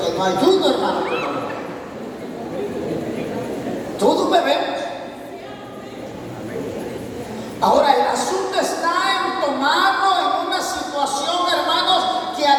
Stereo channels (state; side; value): identical; both; correlation 1.00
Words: no hay uno, hermano. Todos bebemos. Ahora, el asunto está en tomarlo en una situación, hermanos, que a